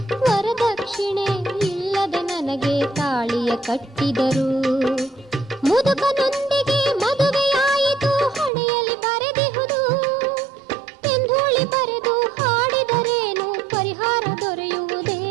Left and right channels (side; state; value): left; drops out; at 8.5 s